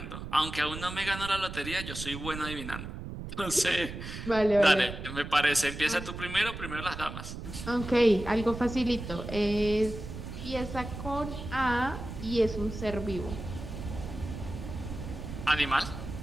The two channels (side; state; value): right; noise; rumble, 9 dB below the sound